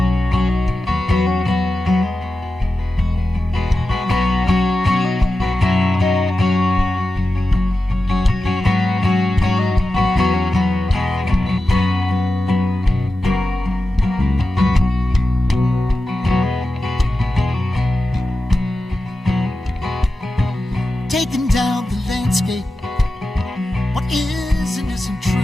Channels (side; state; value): both; normal; correlation 0.93